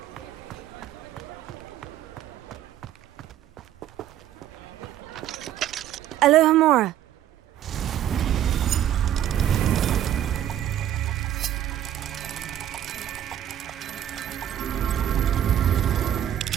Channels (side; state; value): left; quieter; 11.3 dB